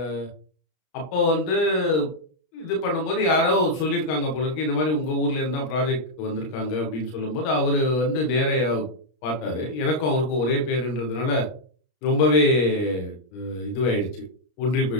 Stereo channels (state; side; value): late; right; 32 ms